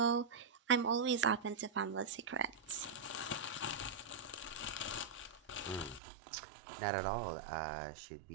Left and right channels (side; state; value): left; drops out; at 6.0 s